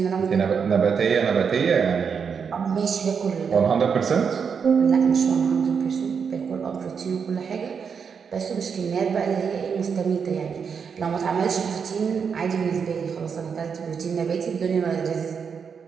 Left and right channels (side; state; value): left; quieter; 6.4 dB